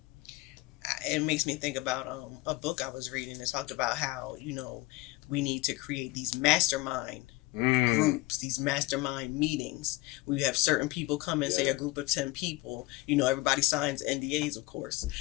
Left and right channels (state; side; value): quieter; right; 20.3 dB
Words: It makes me think about a book I was reading that talked about how, you know, we need to create these mastermind groups, these mastermind meetings. We have certain people come in, say a group of 10 people, you know, everybody signs NDAs, of course,